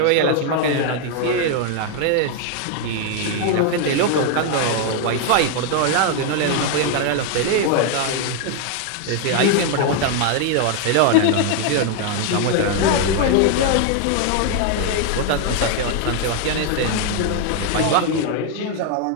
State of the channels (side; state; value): both; different; correlation 0.00